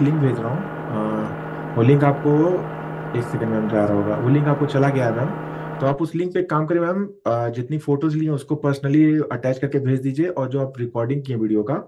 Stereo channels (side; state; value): both; identical; correlation 1.00